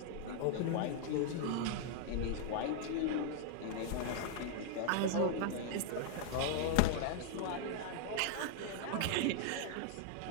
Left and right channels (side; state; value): both; different; correlation 0.00